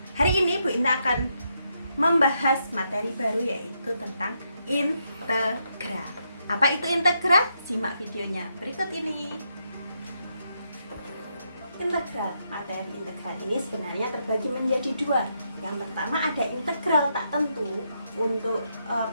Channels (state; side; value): inverted; both; correlation -0.79